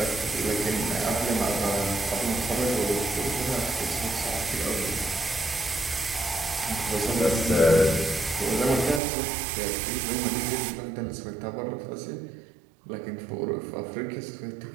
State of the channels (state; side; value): drops out; left; at 9.0 s